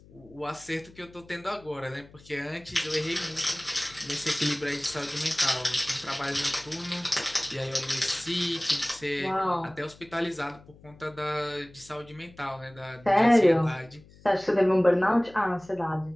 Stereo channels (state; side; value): noise; left; hum, 24 dB below the sound